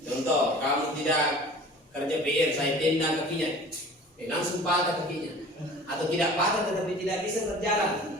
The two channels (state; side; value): normal; both; correlation 0.43